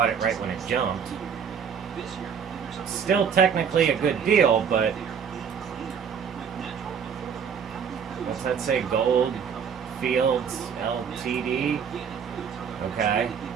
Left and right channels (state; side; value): quieter; left; 7.1 dB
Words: it right when it jumped. Still technically a good deal, but what's that say? Gold Fields Ltd. Okay.